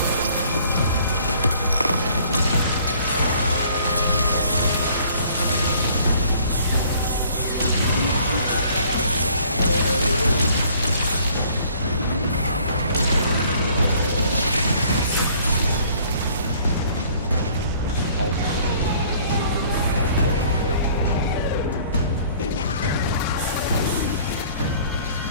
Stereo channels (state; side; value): inverted; both; correlation -0.56